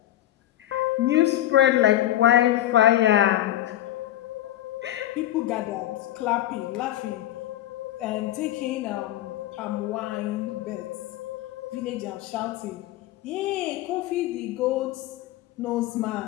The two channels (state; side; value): quieter; right; 13.6 dB